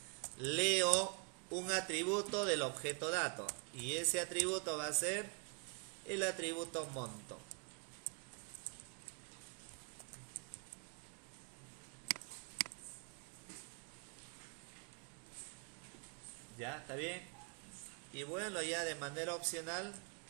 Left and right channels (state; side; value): quieter; left; 39.4 dB